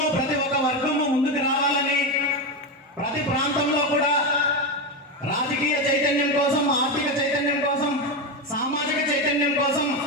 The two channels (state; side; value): normal; both; correlation 0.13